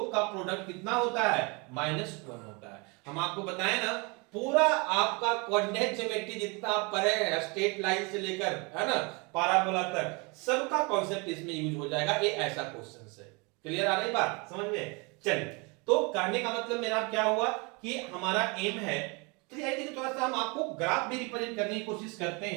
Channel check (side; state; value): left; quieter; 29.6 dB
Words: का प्रोडक्ट कितना होता है, -1 होता है। हम आपको बताएं ना, पूरा आपका कोऑर्डिनेट ज्योमेट्री जितना आप पढ़े हैं स्ट्रेट लाइन से लेकर, है ना, पाराबोला तक, सबका कॉन्सेप्ट इसमें यूज हो जाएगा। ये ऐसा क्वेश्चन है। क्लियर आ रही बात समझ में? चलिए तो कहने का मतलब मेरा क्या हुआ कि हमारा एम है, थोड़ा सा हम आपको ग्राफ भी रिप्रेजेंट करने की कोशिश करते